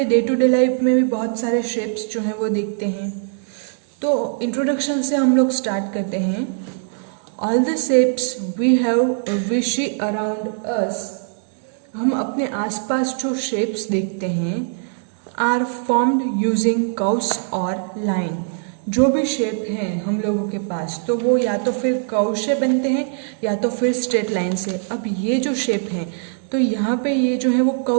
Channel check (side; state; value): left; silent; digital silence